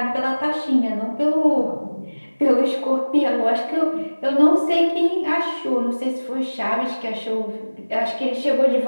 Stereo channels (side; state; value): both; inverted; correlation -1.00